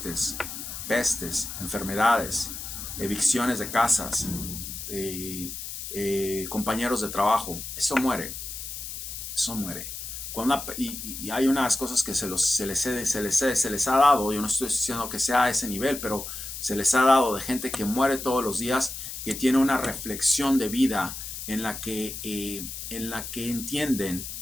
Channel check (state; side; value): noise; left; hiss, 8 dB below the sound